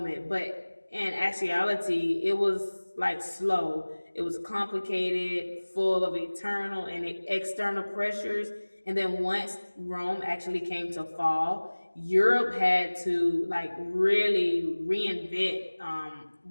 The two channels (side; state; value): both; inverted; correlation -1.00